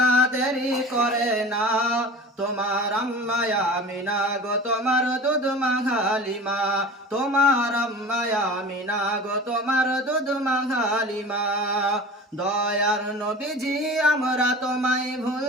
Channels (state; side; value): normal; both; correlation 0.37